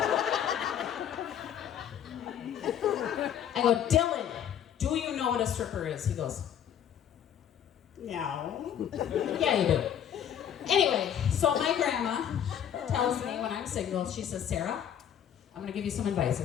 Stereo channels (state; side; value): quieter; right; 9.5 dB